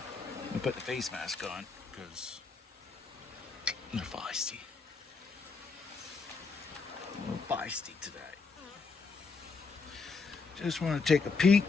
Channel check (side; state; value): right; quieter; 4.6 dB